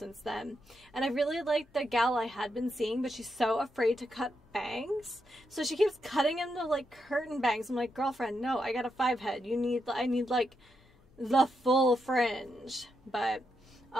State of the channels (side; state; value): both; normal; correlation 0.83